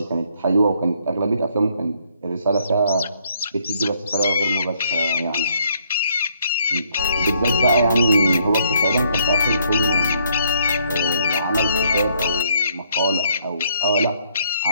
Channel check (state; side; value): inverted; both; correlation -0.68